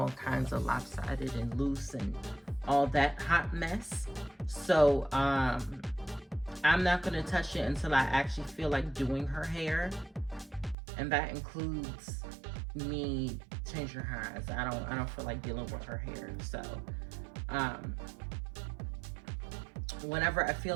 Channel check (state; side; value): drops out; left; at 10.8 s